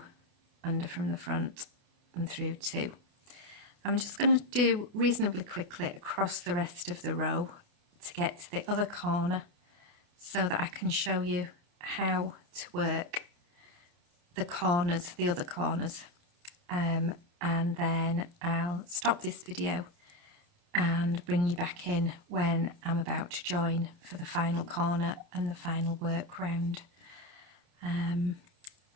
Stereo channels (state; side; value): late; left; 28 ms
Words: under from the front and through 2. I'm just going to do reasonably quickly across the rest of the row to get to the other corner so that I can show you how to work the corners, the other corners, and then I'll stop this video and bring you back in when I'm about to join for the final corner and the final work round.